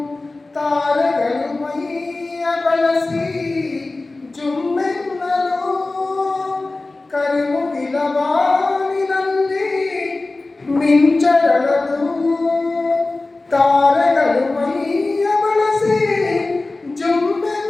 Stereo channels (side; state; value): right; quieter; 3.2 dB